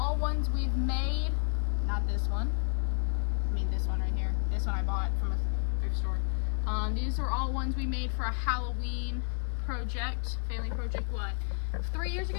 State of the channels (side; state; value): right; silent; 57 dB below the other